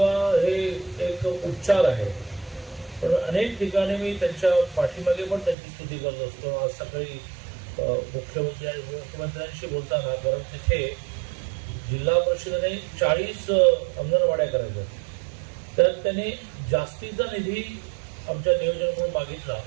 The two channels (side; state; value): left; drops out; at 5.6 s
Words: हे एक उपचार आहे, पण अनेक ठिकाणी मी त्यांच्या पाठीमागे पण त्यांची स्तुती करत असतो। आज सकाळी मुख्यमंत्र्यांशी बोलताना, कारण तिथे जिल्हा परिषदेने 40 अंगणवाड्या करायच्या, त्यात त्यांनी जास्तीचा निधी आमच्या नियोजनाकडून मागितला